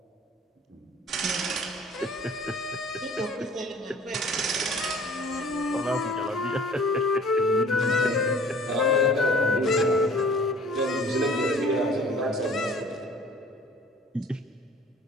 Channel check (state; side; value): normal; both; correlation 0.49